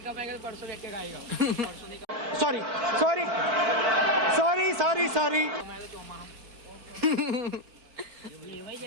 कमाएगा तो परसों बैठ के खाएगा। Sorry sorry sorry sorry sorry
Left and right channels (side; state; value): left; late; 4.5 ms